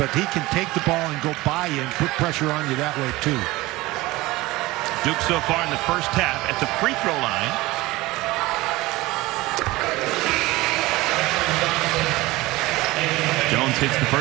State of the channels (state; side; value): quieter; left; 19.7 dB